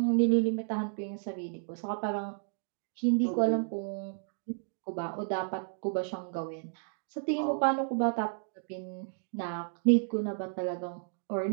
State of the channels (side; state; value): left; silent; digital silence